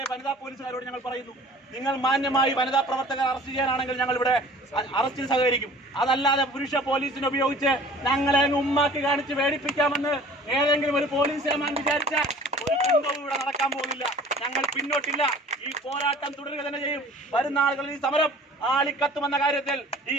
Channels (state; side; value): normal; both; correlation 0.47